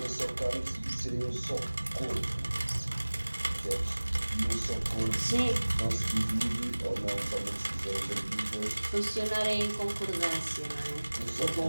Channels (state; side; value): inverted; both; correlation -1.00